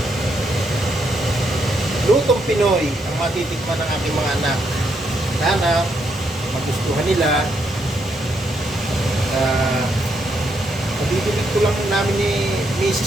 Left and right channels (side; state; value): both; normal; correlation 0.77